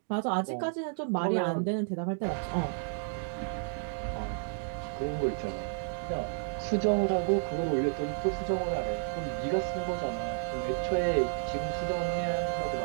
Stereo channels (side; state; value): left; silent; digital silence